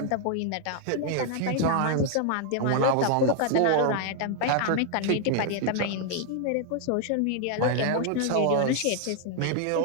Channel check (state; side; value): different; both; correlation 0.00